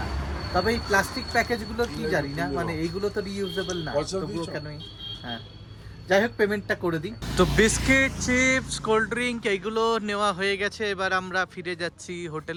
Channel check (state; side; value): identical; both; correlation 1.00